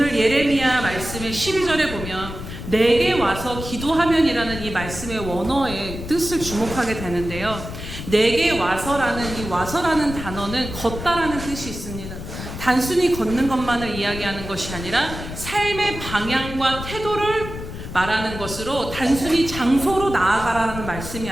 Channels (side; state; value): left; noise; rumble, 9 dB below the sound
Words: 예레미야 말씀의 12절에 보면 내게 와서 기도하면이라는 이 말씀의 원어의 뜻을 주목하게 되는데요. 내게 와서라는 이 와서라는 단어는 걷다라는 뜻이 있습니다. 단순히 걷는 것만을 이야기하는 것이 아니라 삶의 방향과 태도를 말하는 것으로 단순히 장소로 나아가라는 말씀이